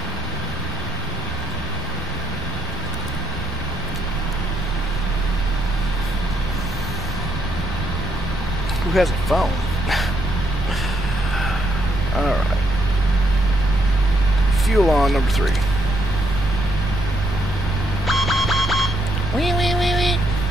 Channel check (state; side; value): normal; both; correlation 0.74